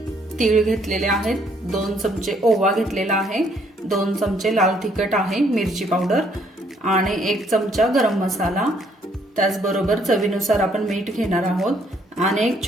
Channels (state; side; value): normal; both; correlation 0.67